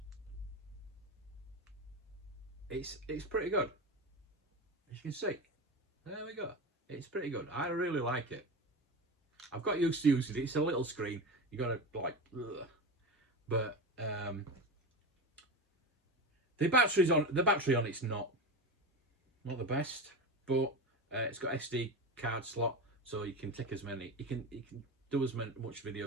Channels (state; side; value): normal; both; correlation 0.23